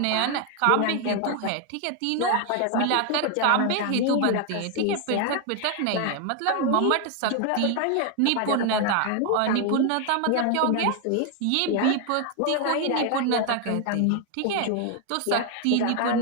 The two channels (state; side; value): different; both; correlation 0.00